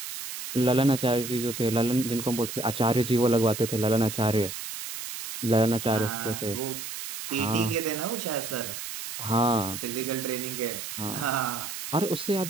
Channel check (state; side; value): noise; right; hiss, 8 dB below the sound